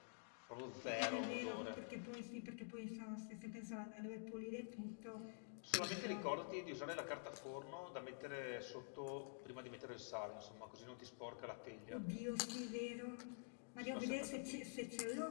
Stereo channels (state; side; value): silent; right; digital silence